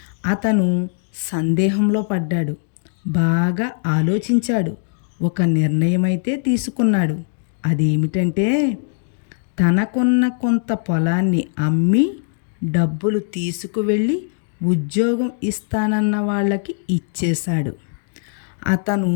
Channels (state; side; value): silent; right; digital silence